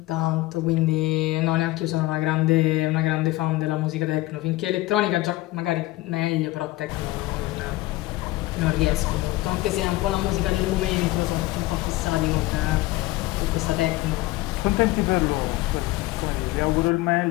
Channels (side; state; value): right; quieter; 18.7 dB